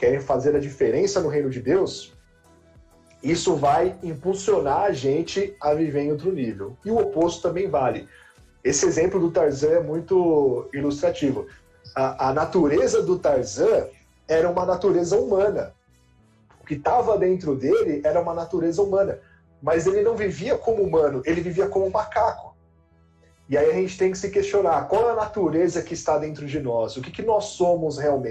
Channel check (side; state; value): both; identical; correlation 1.00